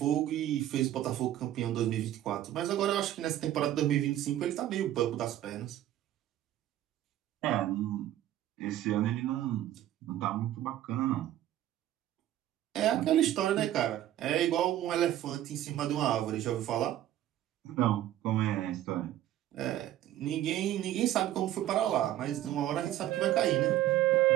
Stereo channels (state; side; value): quieter; left; 12.9 dB